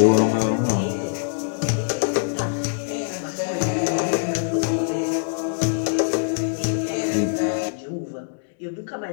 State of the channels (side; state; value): right; silent; digital silence